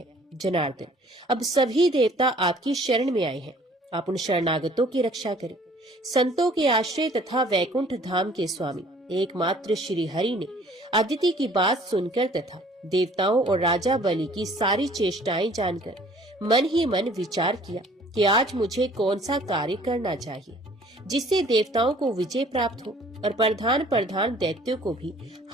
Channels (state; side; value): normal; both; correlation 0.54